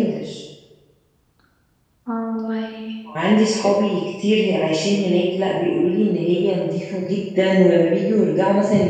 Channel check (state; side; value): identical; both; correlation 1.00